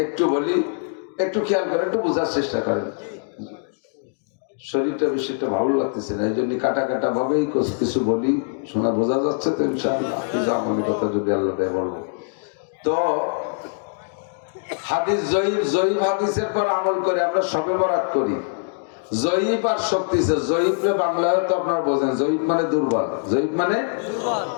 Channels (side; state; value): right; silent; digital silence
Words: একটু বলি, একটু খেয়াল করে, একটু বোঝার চেষ্টা করেন। শরীরটা বেশিটা ভালো লাগতেছে না, এই জন্য কাটা ভাবেই কিছু বলি, শোনা বোঝা যাচ্ছে তো ইনশাআল্লাহ। আমলি কথা যদি আল্লাহ দেয় বলবো তো। হাদিস জয়ীফ হাদিসের পর আমল করে আমরা শবে বরাত করি। জয়ীফ আর শক্তিশালী, জয়ীফ বাংলায় তো আপনারা বোঝেন, জয়ীফ মানে দুর্বল, জয়ীফ মানে